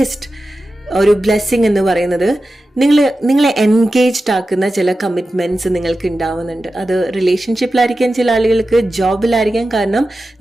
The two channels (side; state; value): both; normal; correlation 0.93